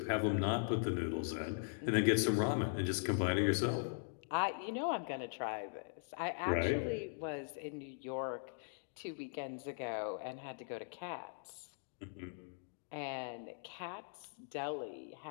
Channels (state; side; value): silent; right; digital silence